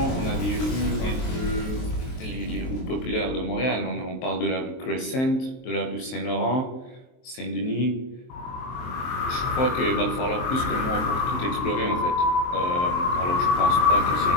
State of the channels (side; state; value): right; late; 23 ms